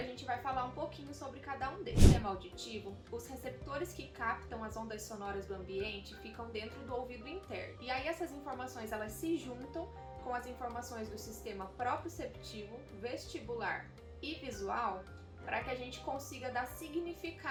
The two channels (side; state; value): both; identical; correlation 1.00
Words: gente vai falar um pouquinho sobre cada um deles. No sistema auditivo, os receptores que captam as ondas sonoras do ambiente ficam dentro do ouvido interno. E aí essas informações elas se juntam com as informações do sistema proprioceptivo, vestibular e visual, para que a gente consiga dar